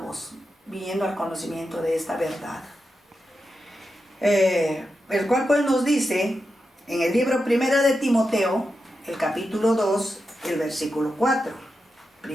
viniendo al conocimiento de esta verdad. El cual pues nos dice en el libro Primera de Timoteo, el capítulo 2, el versículo 4.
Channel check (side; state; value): both; normal; correlation 0.89